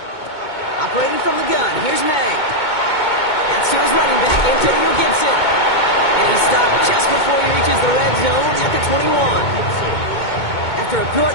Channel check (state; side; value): late; right; 2.2 ms